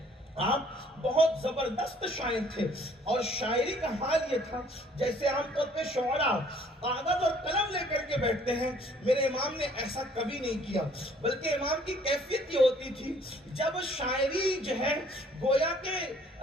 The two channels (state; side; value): normal; both; correlation 0.59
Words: آپ بہت زبردست شاعر تھے، اور شاعری کا حال یہ تھا جیسے عام طور پہ شعراء کاغذ اور قلم لے کر کے بیٹھتے ہیں، میرے امام نے ایسا کبھی نہیں کیا، بلکہ امام کی کیفیت یہ ہوتی تھی جب شاعری جو ہے گویا کہ